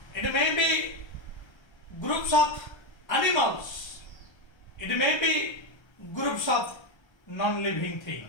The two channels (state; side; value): late; right; 1.3 ms